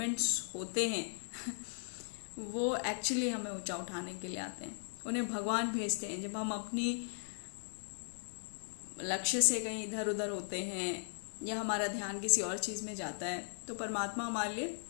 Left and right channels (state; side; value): silent; right; digital silence